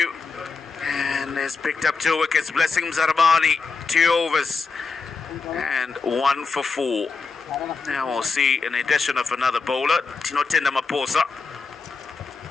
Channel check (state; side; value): quieter; right; 4.6 dB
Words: and has picked up 2 wickets. Blessing Mzarabani 2 overs and 1 for 4. Now we'll see an addition of another bowler, Tinotenda Maposa.